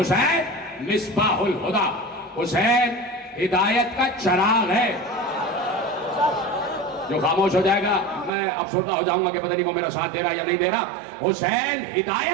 مصباح الہدی, حسین ہدایت کا چراغ ہے. جو خاموش ہو جائے گا میں افسردہ ہو جاؤں گا کہ پتہ نہیں وہ میرا ساتھ دے رہا یا نہیں دے رہا. حسین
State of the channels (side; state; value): left; drops out; at 8.3 s